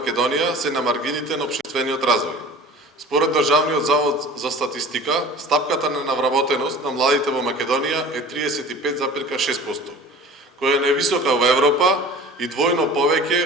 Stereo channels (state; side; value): normal; both; correlation 0.41